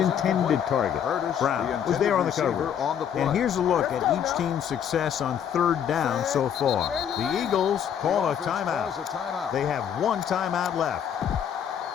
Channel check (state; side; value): quieter; right; 8.7 dB